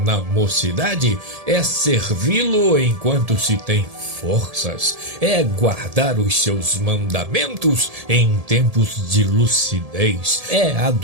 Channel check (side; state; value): left; late; 1.7 ms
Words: na mocidade é servi-lo enquanto se tem forças, é guardar os seus mandamentos em tempos de lucidez, é